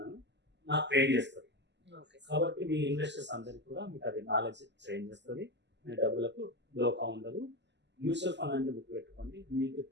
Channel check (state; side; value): late; left; 0.51 ms